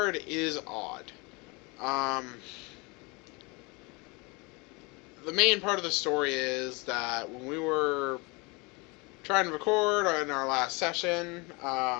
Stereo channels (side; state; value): right; quieter; 27.6 dB